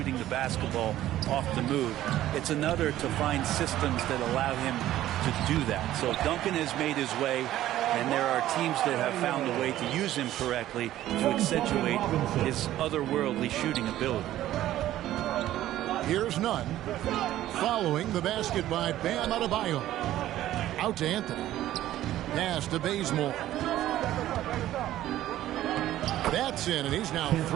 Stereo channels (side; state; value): left; quieter; 13.6 dB